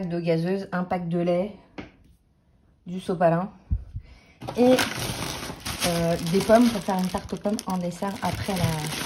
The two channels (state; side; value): identical; both; correlation 1.00